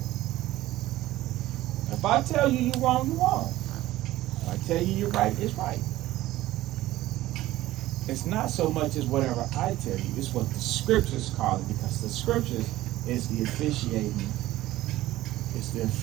If I tell you you're wrong, you're wrong. If I tell you you're right, it's right. It's not so much as whatever I tell you, it's what the scriptures call it, because the scriptures is the officiating is the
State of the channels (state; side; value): quieter; left; 16.0 dB